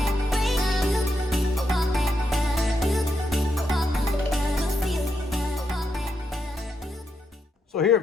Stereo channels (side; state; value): both; normal; correlation 0.82